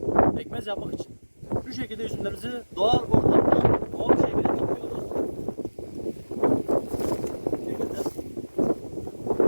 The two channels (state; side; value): inverted; both; correlation -1.00